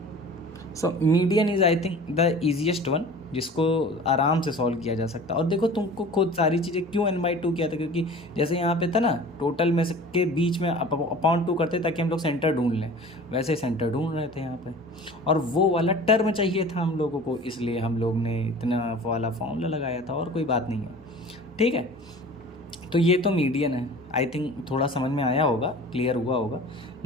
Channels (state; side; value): normal; both; correlation 0.42